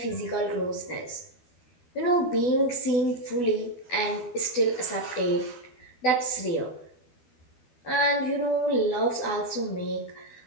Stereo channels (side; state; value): right; late; 12 ms